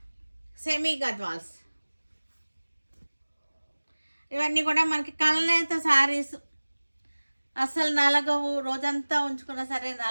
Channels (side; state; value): both; inverted; correlation -1.00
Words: సెమీ గద్వాల్స్. ఇవన్నీ కూడా మనకి కల్నేత శారీస్. అసలు నలగవు, రోజంతా ఉంచుకున్నా సరే